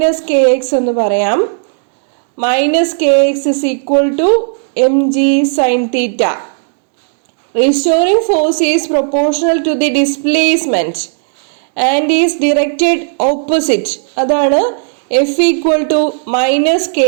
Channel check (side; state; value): left; silent; digital silence